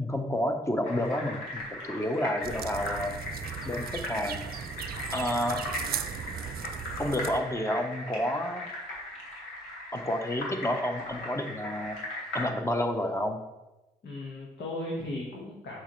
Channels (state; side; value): normal; both; correlation 0.64